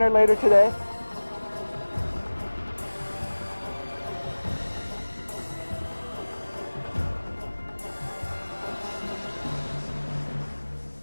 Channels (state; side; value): inverted; both; correlation -1.00